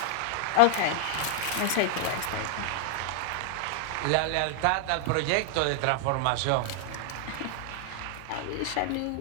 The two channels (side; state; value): both; different; correlation 0.00